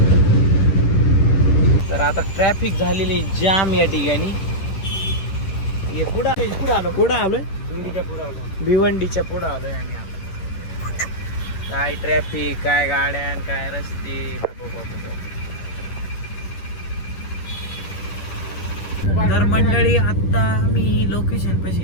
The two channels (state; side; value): late; right; 10 ms